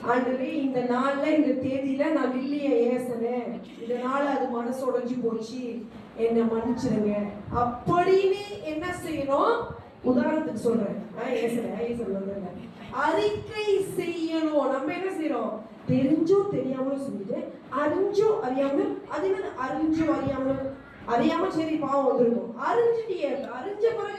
ஆண்டவரே, இந்த நாள்ல இந்த தேதியில நான் இல்லைய ஏசனேன், இதனால அது மனசு உடைஞ்சு போச்சு, என்ன மன்னிச்சிருங்க அப்படின்னு என்ன செய்யணும்? உதாரணத்துக்கு சொல்றேன், அறிக்கை செய்யணும். நம்ம என்ன செய்யறோம்? தெரிஞ்சோ தெரியாமலும் செஞ்சுட்டு, அறிஞ்சோ அறியாமலும், அது என்ன அறிஞ்சோ அறியாமலும் அறியாம சரி பாவம் வந்திருக்கும். அறிஞ்சிட்டியே, அறிஞ்ச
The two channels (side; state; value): both; identical; correlation 1.00